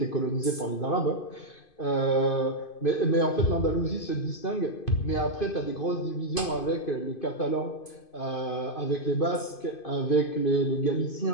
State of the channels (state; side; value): late; right; 2.5 ms